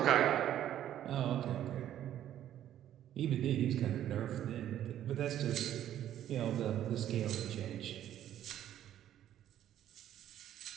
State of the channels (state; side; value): quieter; left; 11.5 dB